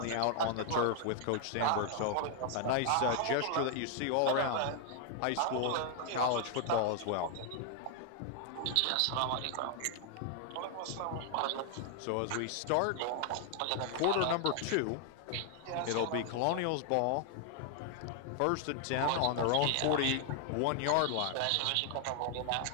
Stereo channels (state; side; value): different; both; correlation 0.00